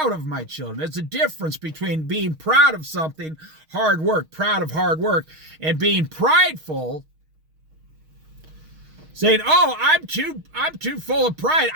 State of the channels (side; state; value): left; late; 6.4 ms